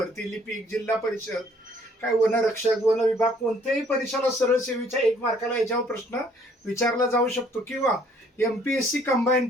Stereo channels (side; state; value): both; normal; correlation 0.61